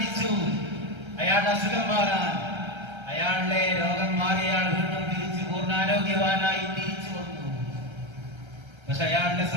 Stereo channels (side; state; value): left; late; 1.3 ms